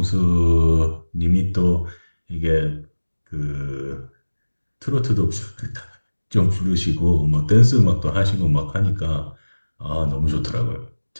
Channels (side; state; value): both; inverted; correlation -1.00